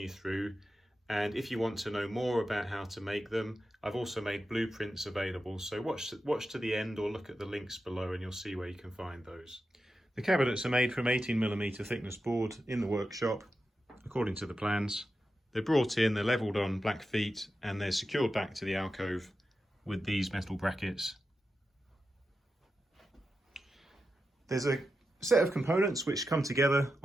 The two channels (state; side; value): normal; both; correlation 0.90